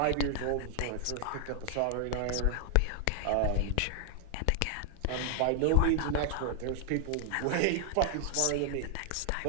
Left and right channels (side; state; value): both; different; correlation 0.00